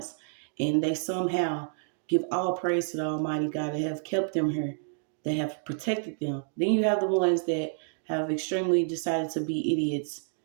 and they somehow give all praise to the Almighty God that have kept them here, that have protected them. Then you have the ones that have extremely decided to be idiots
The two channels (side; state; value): left; silent; digital silence